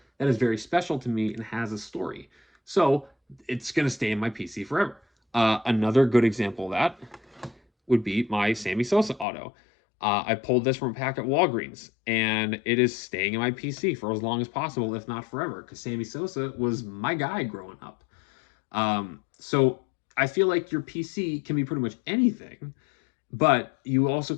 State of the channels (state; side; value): drops out; right; at 9.2 s